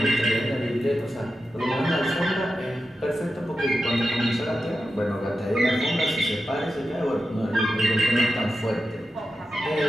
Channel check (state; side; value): normal; both; correlation 0.90